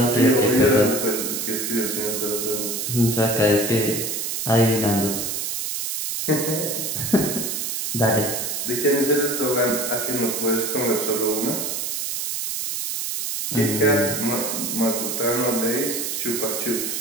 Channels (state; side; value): noise; right; hiss, 2 dB below the sound